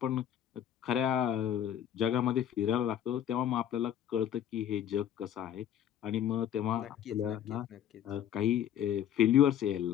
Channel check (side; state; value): right; quieter; 10.2 dB